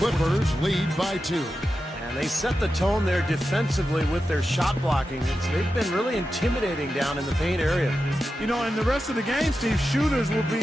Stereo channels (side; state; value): both; normal; correlation 0.91